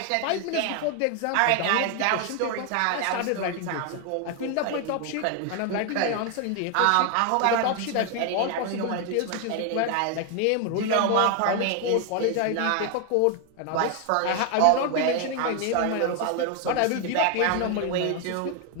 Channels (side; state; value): both; different; correlation 0.01